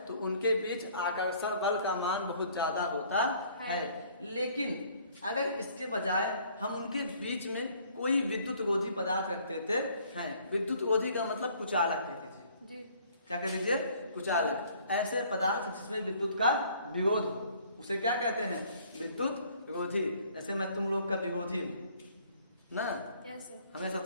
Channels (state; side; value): inverted; both; correlation -0.58